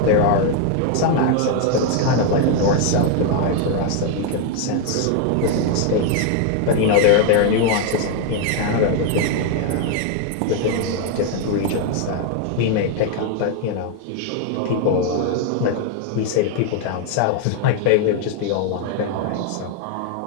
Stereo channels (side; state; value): both; different; correlation 0.01